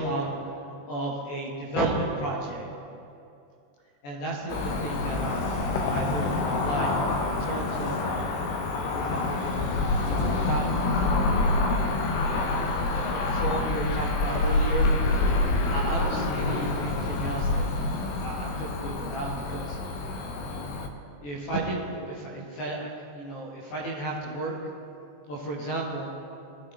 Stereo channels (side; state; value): right; late; 21 ms